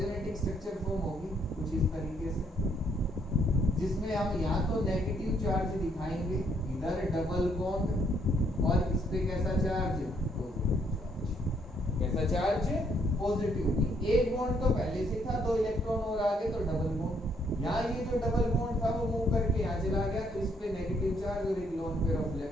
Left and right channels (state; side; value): normal; both; correlation 0.70